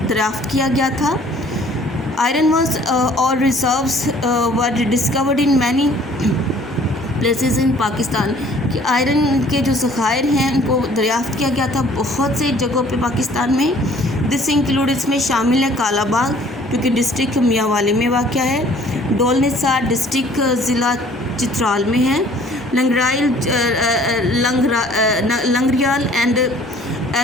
دریافت کیا گیا تھا۔ آئرن واز اور reserves were discovered in many places ان پاکستان، کہ آئرن کے جو ذخائر ہیں ان کو دریافت کیا گیا تھا بہت سے جگہوں پہ پاکستان میں۔ دس انکلوڈ، اس میں شامل ہے کالا باغ جو کہ ڈسٹرکٹ میاں والی میں واقع ہے، ڈول نثار ڈسٹرکٹ ضلع چترال میں ہے، لنگریال اینڈ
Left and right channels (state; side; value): normal; both; correlation 0.55